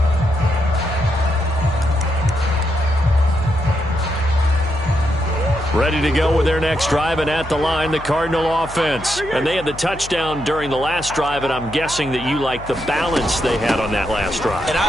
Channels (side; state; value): left; noise; hum, 14 dB below the sound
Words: Ready to go with their next drive, and at the line, the Cardinal offense. And they had the touchdown during the last drive, and I'm guessing that you like the balance they had on that last drive. And